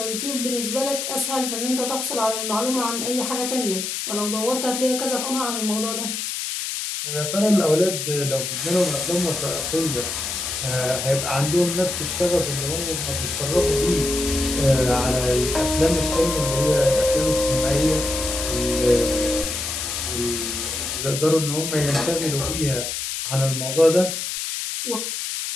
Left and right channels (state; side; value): noise; left; hiss, 4 dB below the sound